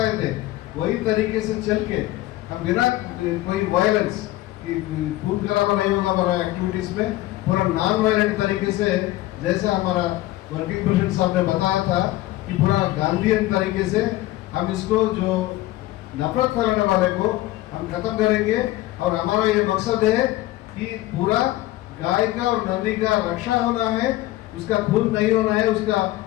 थे, वही तरीके से चल के हम बिना कोई वायलेंस कि खून खराबा नहीं होगा हमारा एक्टिविटीज में, पूरा नॉन वायलेंट तरीके से, जैसा हमारा वर्किंग प्रेसिडेंट साहब ने बताया था कि पूरा गांधीयन तरीके से हम इसको जो नफरत फैलाने वाले को हम खत्म करेंगे। और हमारा ये मकसद है कि पूरा गाय का और नंदी का रक्षा होना है, उसका खून नहीं होना है उसका,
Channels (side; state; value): right; quieter; 16.6 dB